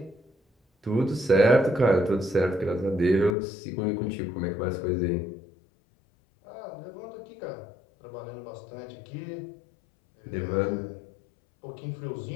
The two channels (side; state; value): right; drops out; at 3.4 s